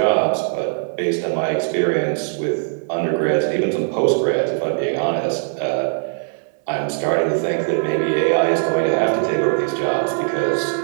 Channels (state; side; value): silent; left; digital silence